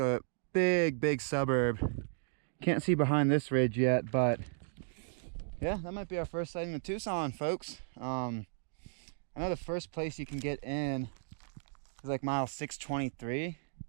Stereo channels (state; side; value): silent; left; digital silence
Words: big, big suburb. Can't see behind this ridge yet, but yeah, that might be our first sighting of Tucson, folks. I know the first place you can get in is like mile 623.